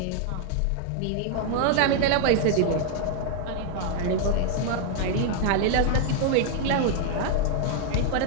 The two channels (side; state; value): both; different; correlation 0.00